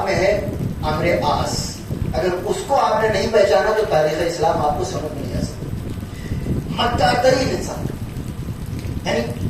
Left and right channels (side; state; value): both; identical; correlation 1.00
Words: میں ہے عمرو عاص. اگر اس کو آپ نے نہیں پہچانا تو تاریخ اسلام آپ کو سمجھ نہیں آ سکتی. مکہ ترین انسان، یعنی